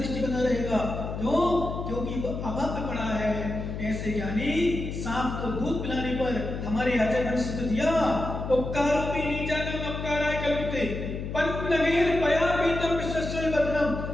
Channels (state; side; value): noise; left; hum, 6 dB below the sound